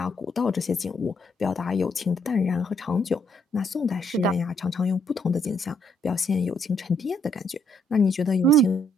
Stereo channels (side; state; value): both; normal; correlation 0.71